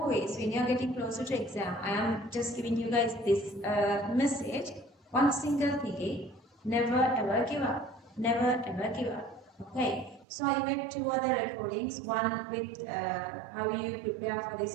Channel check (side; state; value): left; drops out; at 10.2 s